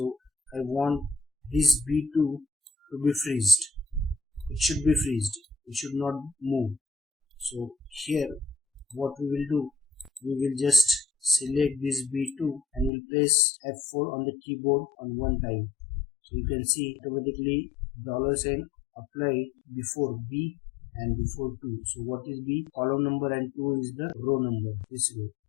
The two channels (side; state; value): right; drops out; at 12.9 s